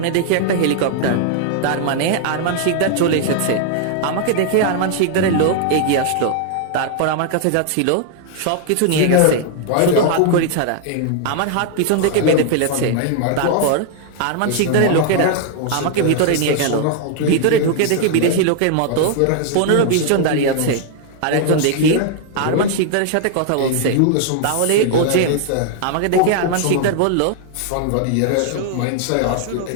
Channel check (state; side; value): different; both; correlation 0.00